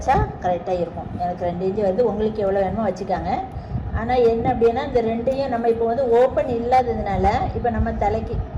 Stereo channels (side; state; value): both; identical; correlation 1.00